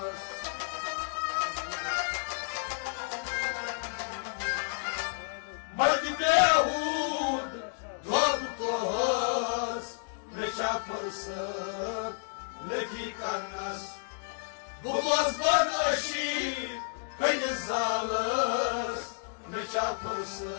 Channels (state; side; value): silent; right; digital silence